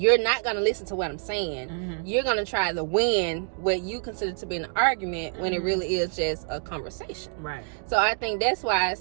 not going to listen to what I'm saying. Mhm. You're going to try to win what you consider to be an argument when it Mhm. really is just a conversation. Right. So I think that's why I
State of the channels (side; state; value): left; silent; 60 dB below the other